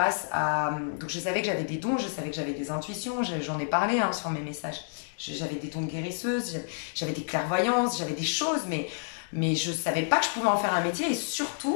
à... Donc je savais que j'avais des dons, je savais que j'avais des intuitions, j'en ai parlé hein, sur mes messages. J'avais des dons de guérisseuse, j'avais des clairvoyances, j'avais des choses, mais je ne savais pas que je pouvais en faire un métier. Et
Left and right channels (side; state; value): right; silent; digital silence